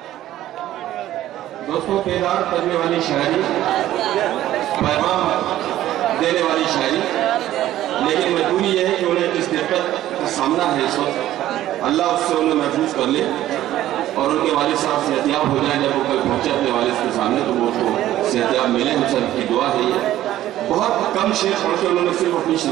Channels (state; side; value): quieter; left; 13.6 dB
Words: دوستوں، بیدار کرنے والی شاعری، پیغام دینے والی شاعری، لیکن مجبوری یہ ہے کہ انہیں اس دقت کا سامنا ہے اس وقت، اللہ اس سے انہیں محفوظ کر لے اور ان کے والد صاحب صحتیاب ہو جائیں۔ جب وہ کل پہنچے اپنے والد کے سامنے تو وہ اس کو صحتیاب ملے، ان سے کی دعا ہے۔ یہ بہت کم شعر پڑھ کے انہوں نے صرف اپنی